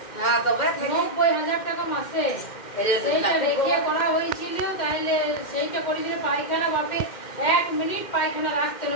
হ্যাঁ তবে 90,000 টাকা মাসে। সেইটা রেখে করা হয়েছিল, তাইলে সেইটা করেছিল পায়খানা বাপে 1 মিনিট পায়খানা রাখতে না,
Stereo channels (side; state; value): right; late; 2.1 ms